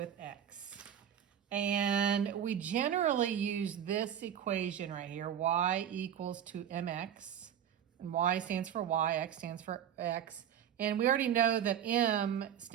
x. And we generally use this equation right here, y equals to mx, and y stands for y, x stands for x. And we already know that m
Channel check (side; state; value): left; quieter; 9.6 dB